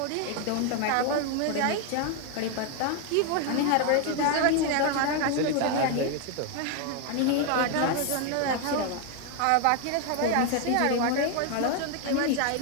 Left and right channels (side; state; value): both; different; correlation 0.01